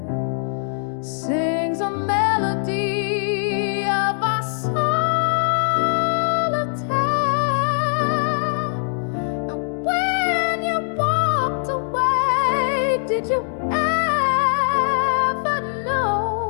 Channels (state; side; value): silent; right; digital silence